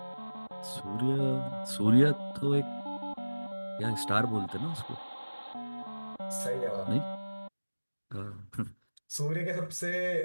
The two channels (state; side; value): inverted; both; correlation -1.00